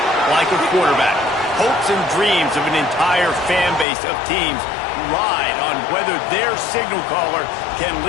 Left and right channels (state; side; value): drops out; right; at 3.9 s